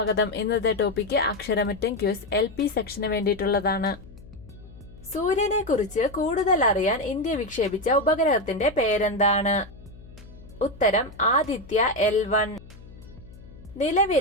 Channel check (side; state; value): left; noise; hum, 19 dB below the sound